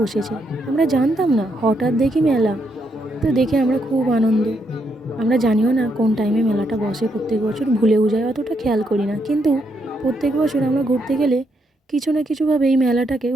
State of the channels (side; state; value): both; normal; correlation 0.78